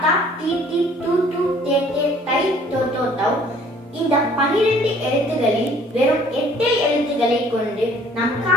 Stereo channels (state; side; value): normal; both; correlation 0.56